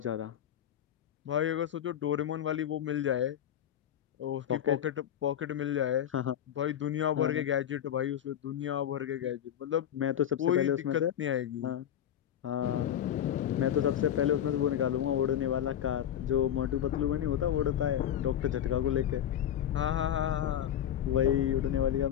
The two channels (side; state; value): right; quieter; 10.3 dB